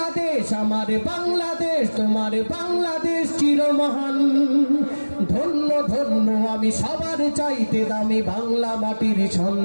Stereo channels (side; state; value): both; inverted; correlation -1.00